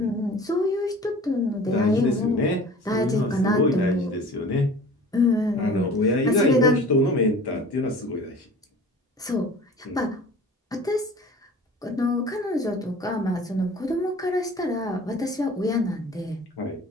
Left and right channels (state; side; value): normal; both; correlation 0.43